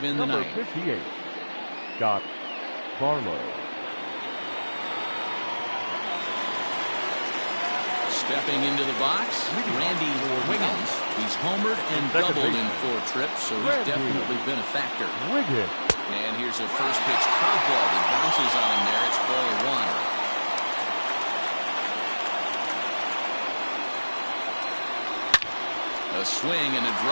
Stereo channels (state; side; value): inverted; both; correlation -1.00